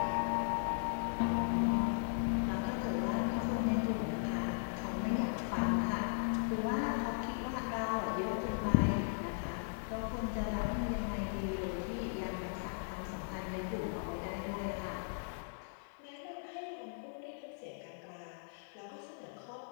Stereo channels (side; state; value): right; silent; digital silence